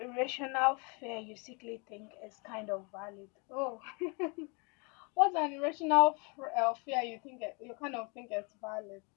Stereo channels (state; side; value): quieter; right; 32.6 dB